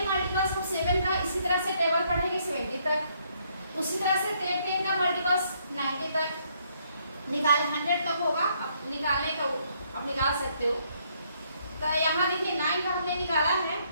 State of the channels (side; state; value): both; inverted; correlation -0.70